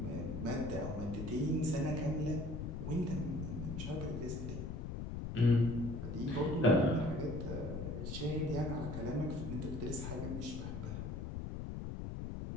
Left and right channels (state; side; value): noise; left; rumble, 5 dB below the sound